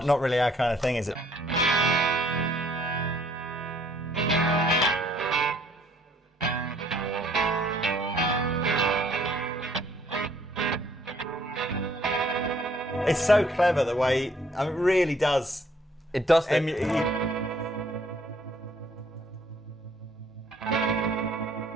Not really our kind of thing, is it? It's so clever the way, I mean, it really does. It does.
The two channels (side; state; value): both; normal; correlation 0.62